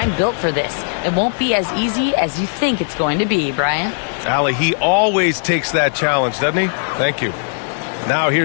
built for this. It won't be as easy as you think it's going to be," Brian. Allie, he always takes that challenge, doesn't he? Thank you. Now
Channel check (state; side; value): silent; right; digital silence